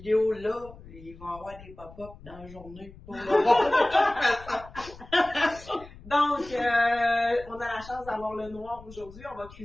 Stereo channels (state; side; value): noise; left; rumble, 19 dB below the sound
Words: là, ils vont avoir des pop-up dans la journée pour le voir de toute façon. Donc, on a la chance d'avoir le noir aujourd'hui. On va